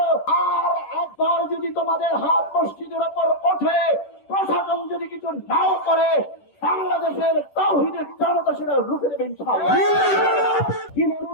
আর একবার যদি তোমাদের হাত মসজিদের উপর ওঠে, প্রশাসন যদি কিছু নাও করে, বাংলাদেশের তাওহীদের জনতা সেটা রুখে দেবে ইনশাআল্লাহ। কিভাবে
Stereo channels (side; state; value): right; late; 10 ms